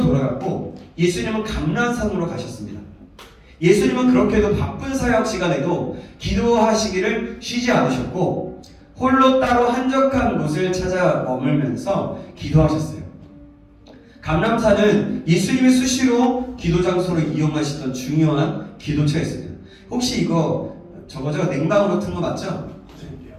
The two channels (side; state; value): both; identical; correlation 1.00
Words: 돌아갔고 예수님은 감람산으로 가셨습니다. 예수님은 그렇게도 바쁜 사역 시간에도 기도하시기를 쉬지 않으셨고 홀로 따로 한적한 곳을 찾아 머물면서 기도하셨어요. 감람산은 예수님이 수시로 기도 장소로 이용하시던 중요한 기도처였습니다. 혹시 이거 저거죠? 냉방으로 튼 거 맞죠?